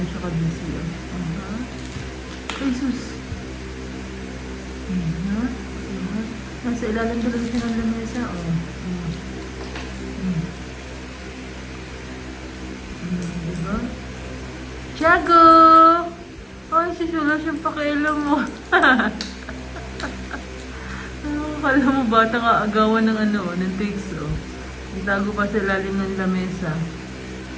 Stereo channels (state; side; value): identical; both; correlation 1.00